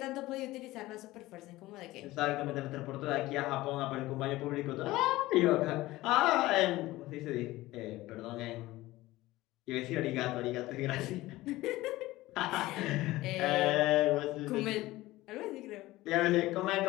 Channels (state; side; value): quieter; right; 17.9 dB